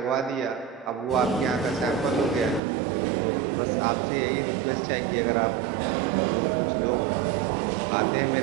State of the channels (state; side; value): drops out; left; at 2.6 s